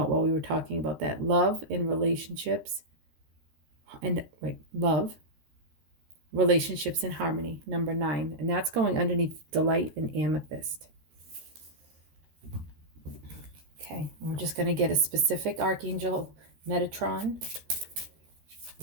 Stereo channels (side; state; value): left; late; 13 ms